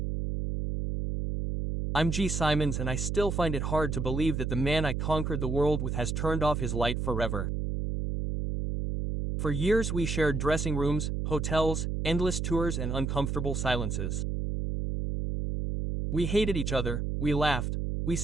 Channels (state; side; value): noise; right; hum, 1 dB below the sound